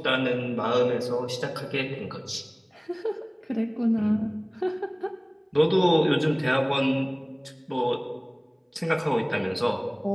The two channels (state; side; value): identical; both; correlation 1.00